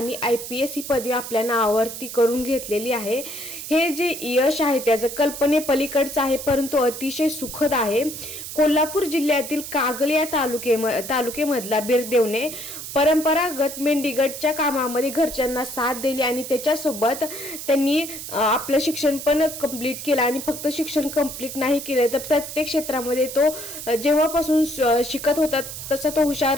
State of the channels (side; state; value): right; noise; hiss, 9 dB below the sound